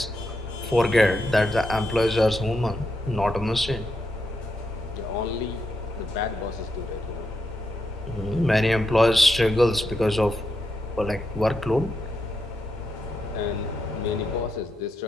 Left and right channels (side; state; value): both; normal; correlation 0.84